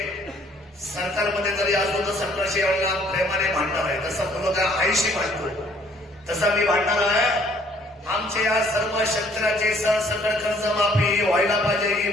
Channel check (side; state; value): both; normal; correlation 0.61